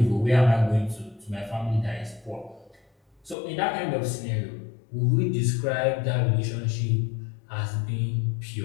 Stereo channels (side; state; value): right; drops out; at 3.4 s